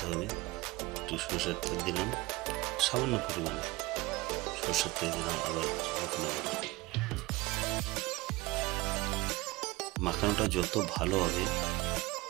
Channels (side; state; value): left; quieter; 21.1 dB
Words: হবে। একটু সরষের তেল দিলাম সামান্য পরিমাণে, সরষের তেল দিলাম, আবার মেখে নেব। মাখানোটা যত ভালো হবে